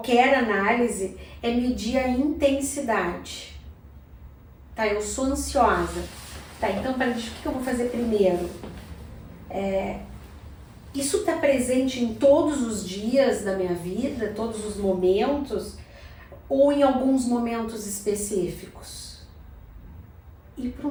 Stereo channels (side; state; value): both; identical; correlation 1.00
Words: análise, é medir a intensidade. Tá, eu sou ansiosa. Tá, então, o que eu vou fazer primeiro? Isso está presente em todos os dias da minha vida, todos os momentos, ou em alguns momentos específicos? E para